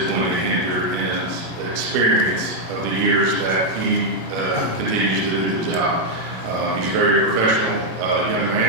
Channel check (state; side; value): late; left; 17 ms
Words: going to hinder his experience of the years that he continues to do the job. He's a very professional young